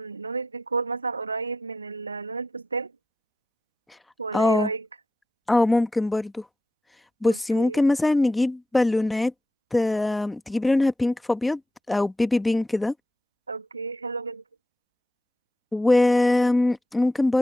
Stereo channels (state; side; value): normal; both; correlation 0.87